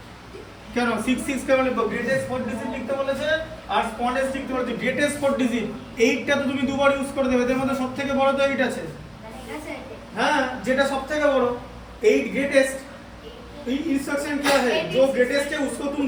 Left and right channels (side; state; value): both; identical; correlation 1.00